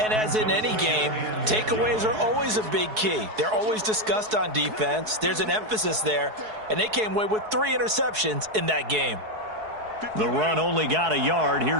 as in any game, takeaways are always a big key. They're always discussed on defense. There's an emphasis there, and they came away with 3 interceptions in that game. The run only got a yard.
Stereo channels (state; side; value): late; left; 4.7 ms